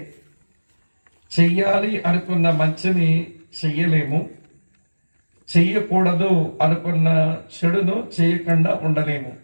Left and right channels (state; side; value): inverted; both; correlation -1.00